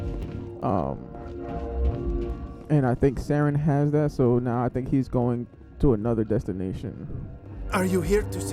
And I think Saren has that, so now I think he's going to another destination. Are you here to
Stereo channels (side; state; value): both; identical; correlation 1.00